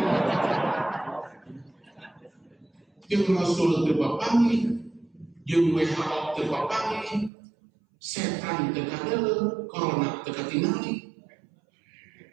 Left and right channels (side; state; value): left; drops out; at 7.3 s